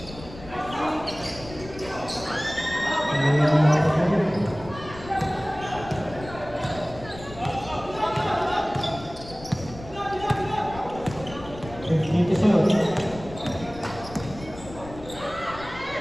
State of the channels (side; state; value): left; noise; rumble, 15 dB below the sound